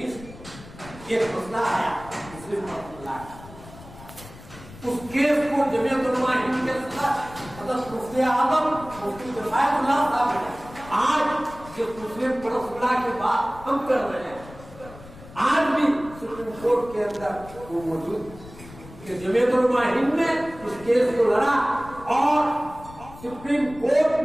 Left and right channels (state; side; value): noise; left; rumble, 18 dB below the sound